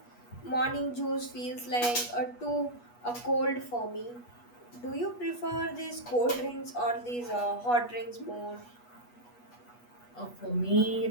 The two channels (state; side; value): late; right; 8.3 ms